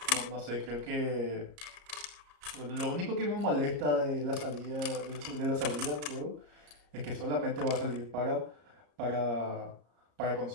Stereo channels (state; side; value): late; left; 34 ms